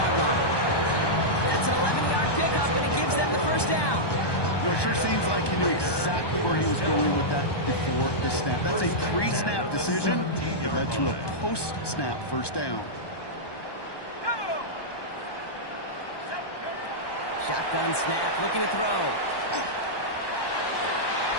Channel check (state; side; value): late; right; 1.2 ms